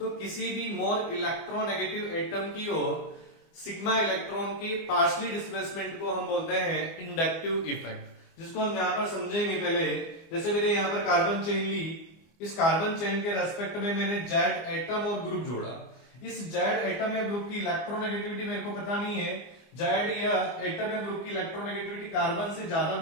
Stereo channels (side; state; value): right; late; 24 ms